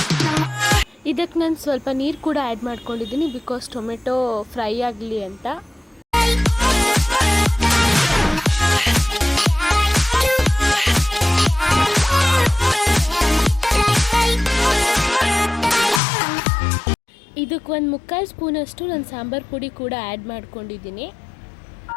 ಇದಕ್ಕೆ ನಾನು ಸ್ವಲ್ಪ ನೀರು ಕೂಡ ಆ್ಯಡ್ ಮಾಡ್ಕೊಂಡಿದ್ದೀನಿ, ಬಿಕಾಸ್ ಟೊಮೆಟೊ ಫ್ರೈ ಆಗಲಿ ಅಂತ. ಇದಕ್ಕೆ 1/4 ಸ್ಪೂನಷ್ಟು ನಾನು ಸಾಂಬಾರು ಪುಡಿ ಕೂಡ ಆ್ಯಡ್ ಮಾಡ್ಕೊಂಡಿದ್ದೀನಿ.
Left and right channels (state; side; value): drops out; right; at 16.0 s